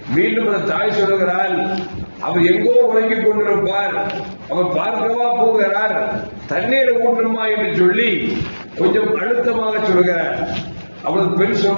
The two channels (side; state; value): both; inverted; correlation -1.00